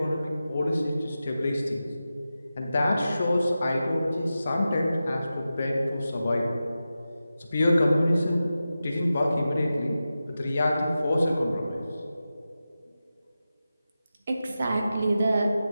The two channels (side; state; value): both; inverted; correlation -0.92